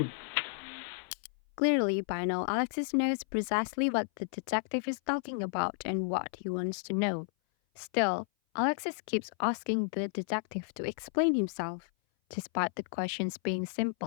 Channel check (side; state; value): right; silent; 56 dB below the other